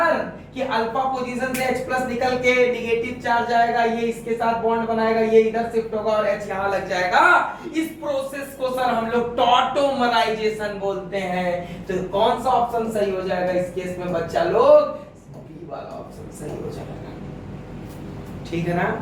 कि alpha position से H+ निकल के निगेटिव चार्ज आएगा, ये इसके साथ बॉन्ड बनाएगा, ये इधर शिफ्ट होगा और H यहां लग जाएगा, इस प्रोसेस को सर हम लोग टॉटोमराइजेशन बोलते हैं। तो कौन सा ऑप्शन सही हो जाएगा इस केस में बच्चा लोग? बी वाला ऑप्शन सही हो जाएगा। ठीक है ना?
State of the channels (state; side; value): identical; both; correlation 1.00